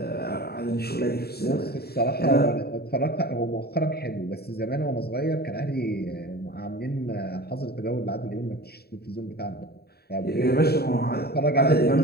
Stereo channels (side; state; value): right; late; 0.46 ms